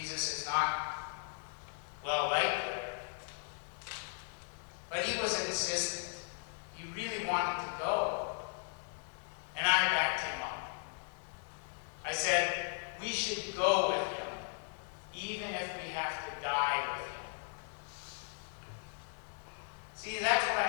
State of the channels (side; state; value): right; silent; 53 dB below the other